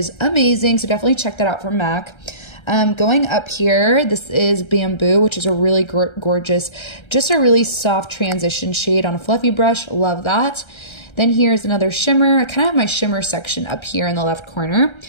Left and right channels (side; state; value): right; late; 1.3 ms